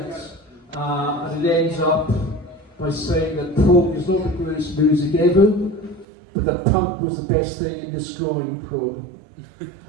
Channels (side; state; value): left; drops out; at 6.1 s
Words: And it ends up by saying that prog is not the greatest music ever, but that punk was the best thing in destroying prog.